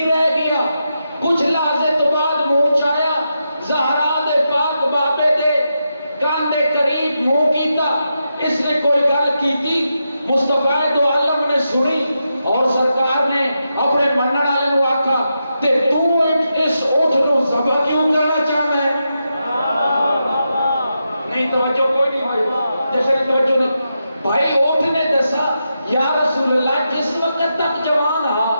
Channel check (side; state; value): both; inverted; correlation -0.86